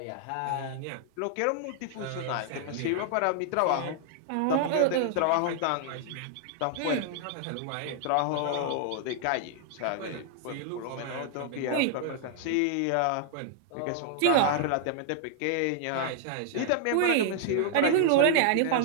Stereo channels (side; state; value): both; different; correlation 0.00